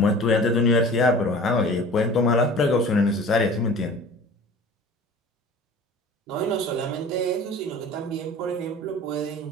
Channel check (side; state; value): both; normal; correlation 0.42